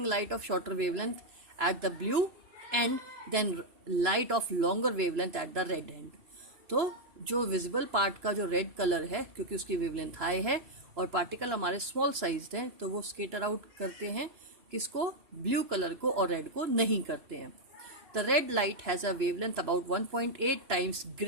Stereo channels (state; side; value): late; left; 2.9 ms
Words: light of shorter wavelength at the blue end than light of longer wavelength at the red end. तो जो visible part का जो red colour है, क्योंकि उसकी wavelength high है और पार्टिकल हमारे स्मॉल साइज हैं, तो वो स्केटर आउट करते हैं किसको, ब्लू कलर को, और रेड को नहीं करते हैं। The red light has a wavelength about 1.8 times